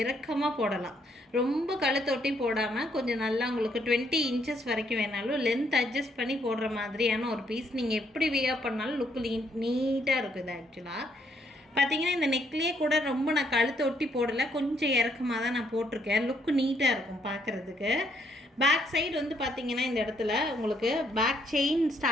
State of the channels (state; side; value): normal; both; correlation 0.71